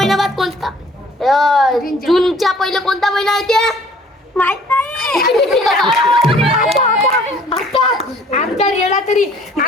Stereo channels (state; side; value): normal; both; correlation 0.55